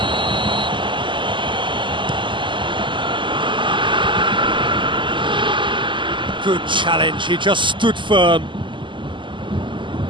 Good challenge, he just stood firm.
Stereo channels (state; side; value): late; left; 0.24 ms